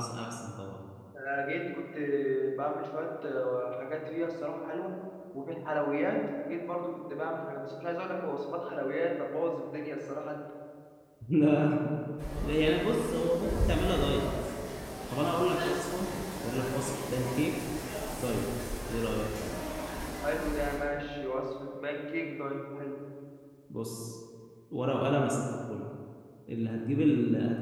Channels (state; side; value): identical; both; correlation 1.00